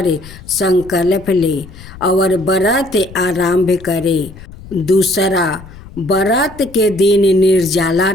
संकल्प ले और व्रत आरंभ करे। दूसरा, व्रत के दिन निर्जला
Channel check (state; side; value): noise; left; rumble, 18 dB below the sound